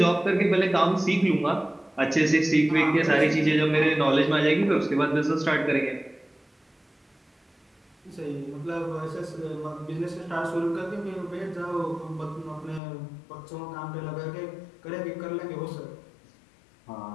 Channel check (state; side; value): drops out; right; at 12.8 s